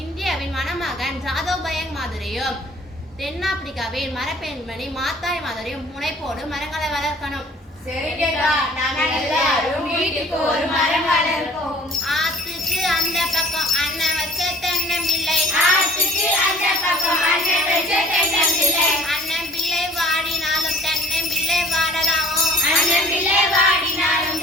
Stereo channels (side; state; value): both; normal; correlation 0.51